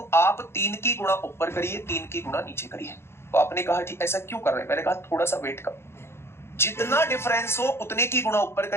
आप 3 की गुणा ऊपर करिए, 3 की गुणा नीचे करिए। तो आपने कहा जी ऐसा क्यों कर रहे हैं, मैंने कहा थोड़ा सा वेट करो। जितना डिफरेंस हो उतने की गुणा ऊपर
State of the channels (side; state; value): right; late; 0.12 ms